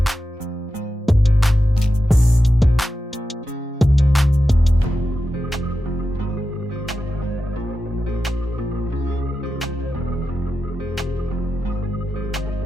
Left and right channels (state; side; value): normal; both; correlation 0.91